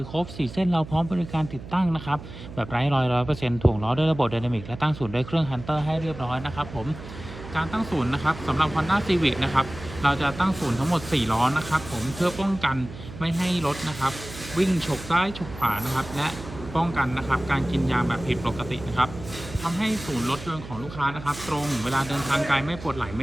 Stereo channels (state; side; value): noise; right; hum, 13 dB below the sound